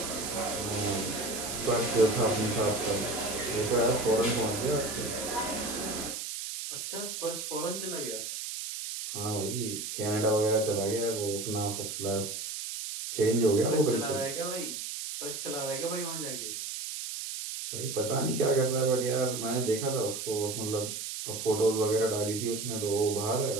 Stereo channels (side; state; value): right; noise; hiss, 6 dB below the sound